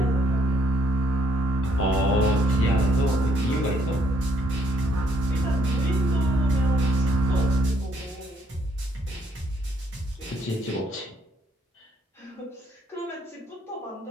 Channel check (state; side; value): normal; both; correlation 0.70